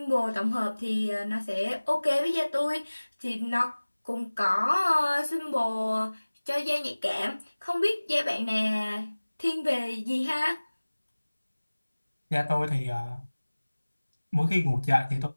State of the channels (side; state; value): both; inverted; correlation -1.00